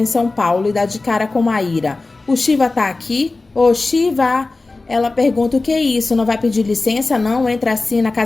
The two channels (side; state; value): right; quieter; 3.4 dB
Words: São Paulo e dá de cara com Maíra. O Shiva tá aqui? Ô, Shiva! Ela pergunta: o que é isso? Não vai pedir licença, não? Entra assim na